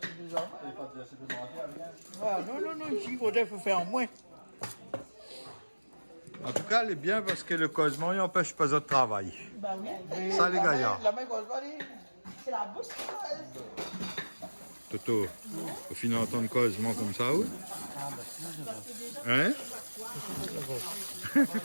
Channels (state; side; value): inverted; both; correlation -1.00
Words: des enfants. Ah, non, ici, il faudrait faire en moins. En tout cas, elle est bien parce que le causement il n'empêche pas de travail. Bah oui. Ça, les gars. La main cause pas dit. C'est la bouche. Toto, au final, entendre causement comme ça, ou? Hein?